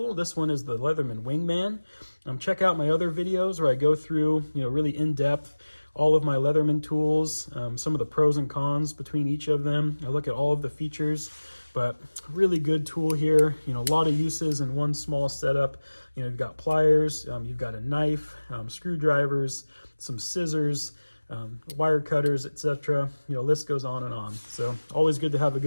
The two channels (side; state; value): both; inverted; correlation -1.00